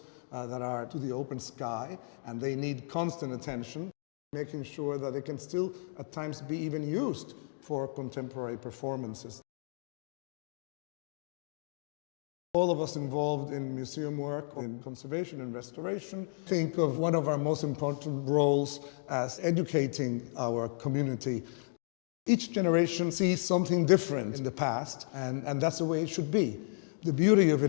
that are to the open sky, and they need constant attention, making sure that they can still at times be even used for contemporary performances. All of us involved in museum work, in conservation and restoration, think of one of our most important roles as educating our community. Each generation sees something different in the past, and that's the way it should be. The beauty of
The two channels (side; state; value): right; silent; digital silence